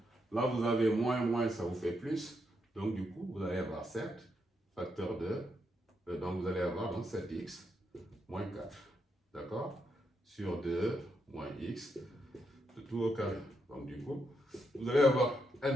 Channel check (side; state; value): both; normal; correlation 0.80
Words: là vous avez moins, ça vous fait plus, donc du coup, vous allez avoir 7 facteur de, donc vous allez avoir donc 7x moins 4, d'accord, sur 2 moins x, le tout au carré. Donc du coup, vous allez avoir